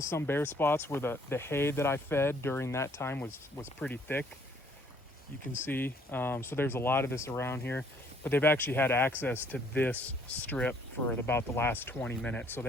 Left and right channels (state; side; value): normal; both; correlation 0.62